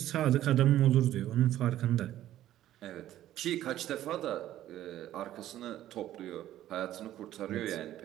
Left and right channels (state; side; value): quieter; left; 13.1 dB